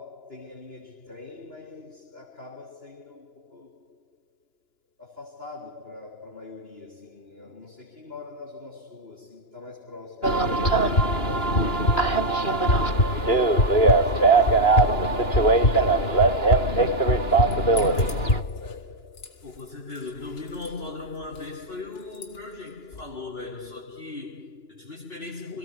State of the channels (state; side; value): late; right; 2.9 ms